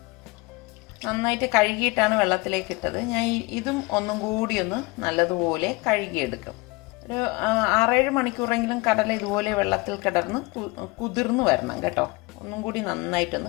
നന്നായിട്ട് കഴുകിയിട്ടാണ് വെള്ളത്തിലേക്ക് ഇട്ടത്. ഞാൻ ഇതും ഒന്നും കൂടി ഒന്ന് നല്ലതുപോലെ കഴുകിയെടുക്കും. ഒരു 6-7 മണിക്കൂറെങ്കിലും കടല ഇതുപോലെ വെള്ളത്തിൽ കിടന്ന് കുതിർന്ന് വരണം കേട്ടോ. ഒന്നും കൂടി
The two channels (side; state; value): right; quieter; 24.5 dB